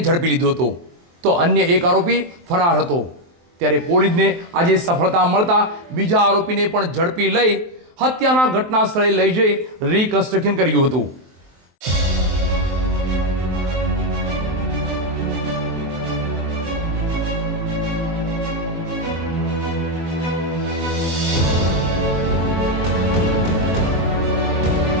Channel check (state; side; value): late; left; 23 ms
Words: લીધો હતો, તો અન્ય એક આરોપી ફરાર હતો। ત્યારે પોલીસને આજે સફળતા મળતા બીજા આરોપીને પણ ઝડપી લઈ હત્યાના ઘટના સ્થળે લઈ જઈ રિકન્સ્ટ્રક્શન કર્યું હતું।